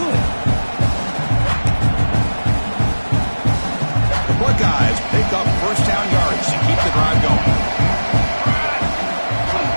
The Buckeyes pick up first down yards to keep the drive going.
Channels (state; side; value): inverted; both; correlation -1.00